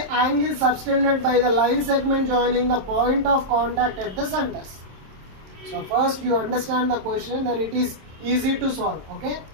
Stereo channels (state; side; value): late; left; 27 ms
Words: angle subtended by the line segment joining the point of contact at the centers. So first you understand the question, then it is easy to solve. Okay.